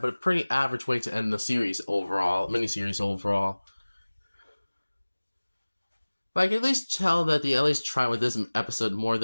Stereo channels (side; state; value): both; inverted; correlation -1.00